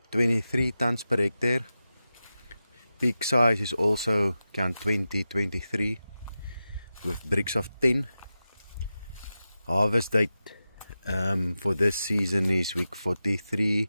23 tons per hectare. Peak size is also count 2023 with bricks of 10. Harvest date for this season is week 43,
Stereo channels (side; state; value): both; inverted; correlation -0.92